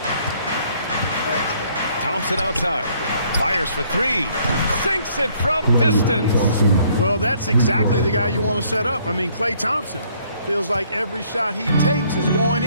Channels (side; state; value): both; inverted; correlation -0.64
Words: Thompson outside. Fires for 3. Sinks it from distance. Well, that's exactly the guy you want to set up. I mean, Klay Thompson feels like every shot he takes is going